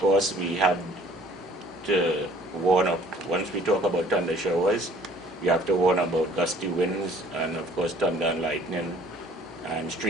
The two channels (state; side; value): normal; both; correlation 0.54